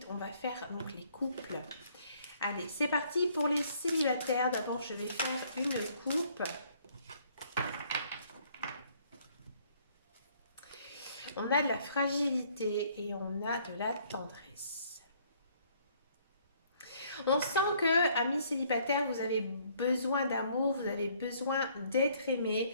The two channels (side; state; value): both; inverted; correlation -0.63